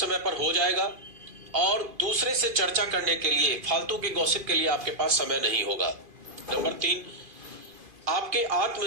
पर हो जाएगा और दूसरे से चर्चा करने के लिए, फालतू के गॉसिप के लिए आपके पास समय नहीं होगा। नंबर 3, आपके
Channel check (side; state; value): left; late; 2.5 ms